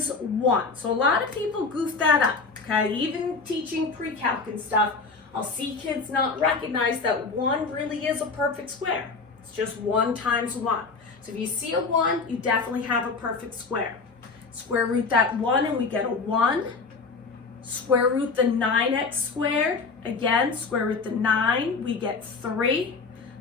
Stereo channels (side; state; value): right; quieter; 4.4 dB